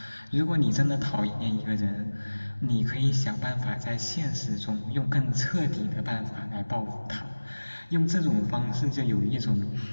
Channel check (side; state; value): both; inverted; correlation -1.00